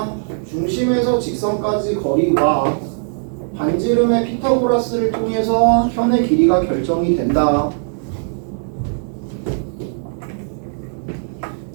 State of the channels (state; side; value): silent; left; digital silence